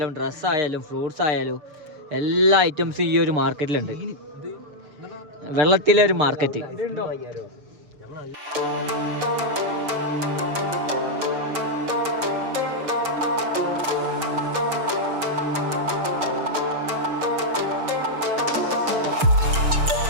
ഡ്രസ്സായാലും ഫ്രൂട്ട്സ് ആയാലും എല്ലാ ഐറ്റംസും ഈ ഒരു മാർക്കറ്റിലുണ്ട്. വെള്ളത്തിലെ ഒരു മാർക്കറ്റ്.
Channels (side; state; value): left; late; 6.7 ms